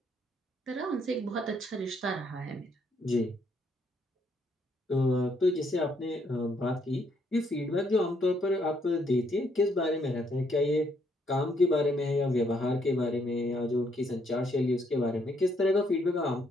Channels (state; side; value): normal; both; correlation 0.71